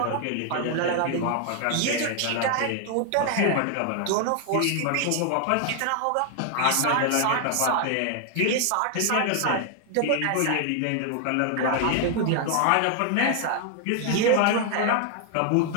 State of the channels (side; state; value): both; different; correlation 0.00